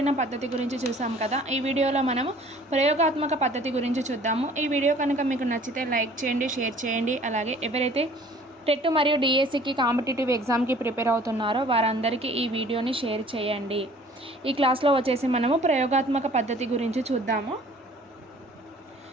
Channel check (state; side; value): normal; both; correlation 0.52